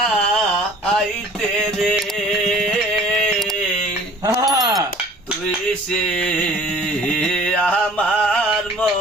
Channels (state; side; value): normal; both; correlation 0.50